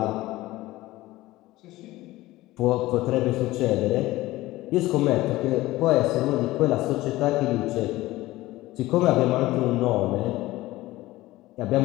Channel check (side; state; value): right; quieter; 17.8 dB